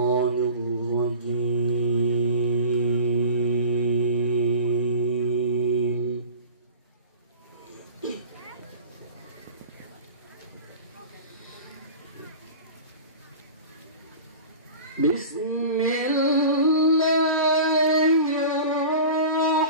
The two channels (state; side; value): inverted; both; correlation -0.37